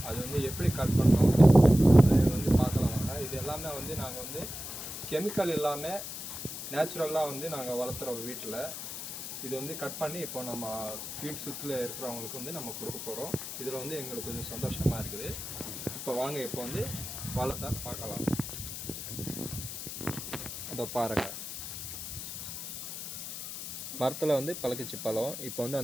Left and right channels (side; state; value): left; noise; hiss, 7 dB below the sound